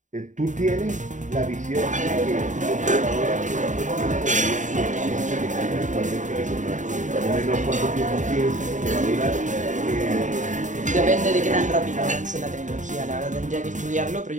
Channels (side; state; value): left; late; 0.36 ms